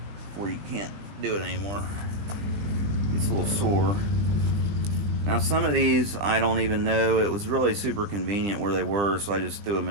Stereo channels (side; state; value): left; late; 20 ms